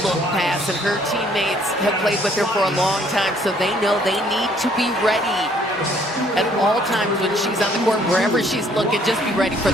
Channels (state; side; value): normal; both; correlation 0.62